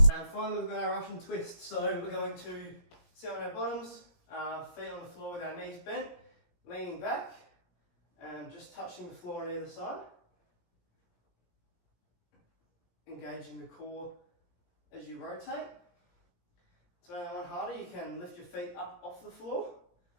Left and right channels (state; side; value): late; right; 17 ms